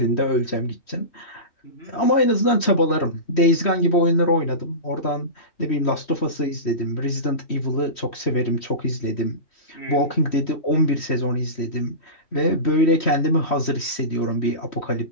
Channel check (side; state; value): right; late; 3.1 ms